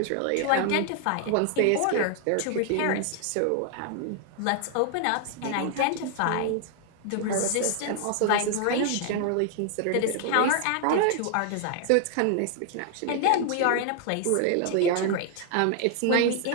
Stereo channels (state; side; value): different; both; correlation 0.00